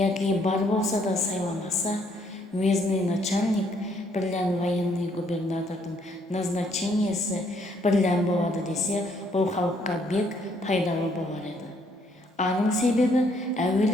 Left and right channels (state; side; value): normal; both; correlation 0.68